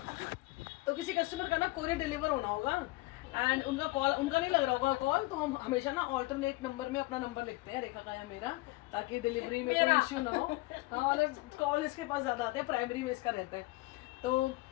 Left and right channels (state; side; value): quieter; right; 21.1 dB